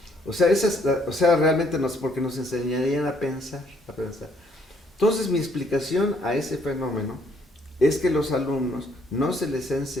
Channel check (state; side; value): normal; both; correlation 0.67